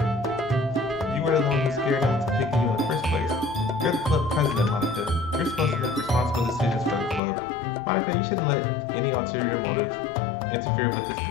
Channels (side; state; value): right; drops out; at 7.2 s